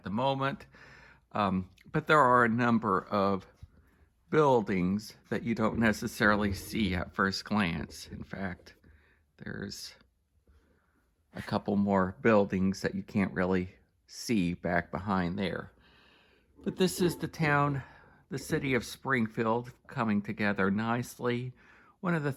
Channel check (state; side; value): identical; both; correlation 1.00